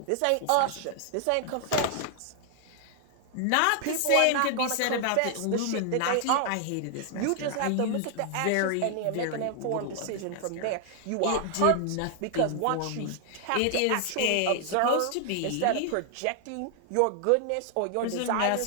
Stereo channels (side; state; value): both; different; correlation 0.00